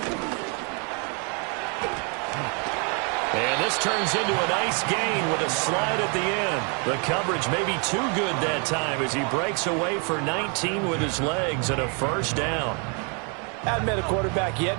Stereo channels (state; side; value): quieter; left; 36.6 dB